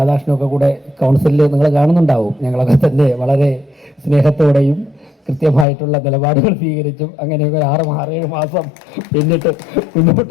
കൂടെ കൗൺസിലിൽ നിങ്ങൾ കാണുന്നുണ്ടാവും. ഞങ്ങളൊക്കെ തന്നെ വളരെ സ്നേഹത്തോടെയും കൃത്യമായിട്ടുള്ള നിലപാടുകൾ സ്വീകരിച്ചും അങ്ങനെയൊക്കെ 6-7 മാസം പിന്നിട്ട്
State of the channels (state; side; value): drops out; right; at 5.7 s